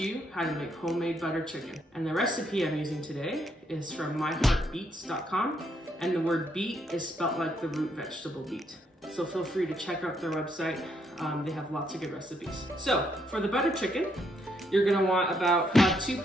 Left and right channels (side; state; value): both; normal; correlation 0.74